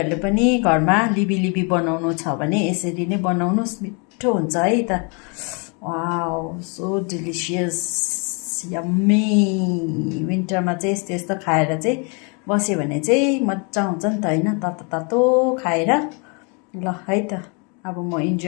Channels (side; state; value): right; quieter; 34.4 dB